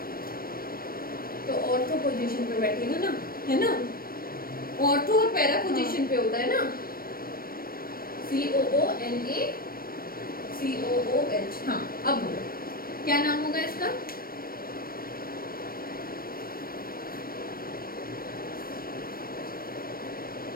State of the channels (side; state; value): right; late; 0.43 ms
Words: तो ऑर्थो पोजीशन पे बैठेगा ना, है ना, ऑर्थो और पैरा पोजीशन पे होता है ना, COONACOOH। हाँ, अब बोलो क्या नाम होगा इसका?